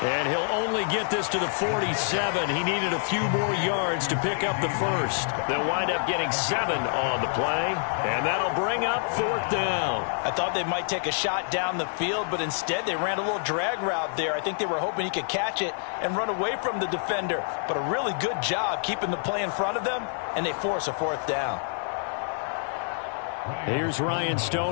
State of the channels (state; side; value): silent; right; digital silence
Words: And he'll only get this to the 47. He needed a few more yards to pick up the 1st. They'll wind up getting 7 on the play, and that'll bring up 4th down. I thought they might take a shot down the field, but instead they ran a little drag route there. I think they were hoping he could catch it and run away from the defender. But a really good job keeping the play in front of them, and they force a 4th down. Here's Ryan